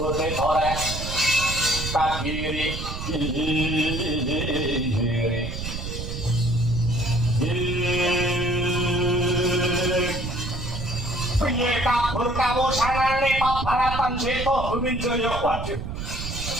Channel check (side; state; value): right; noise; rumble, 6 dB below the sound